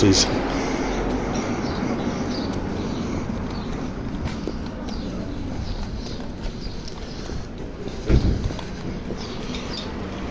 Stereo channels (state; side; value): identical; both; correlation 1.00